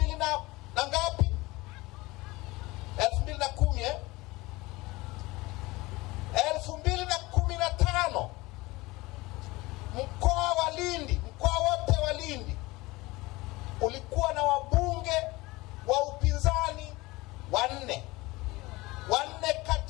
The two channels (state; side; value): quieter; right; 21.4 dB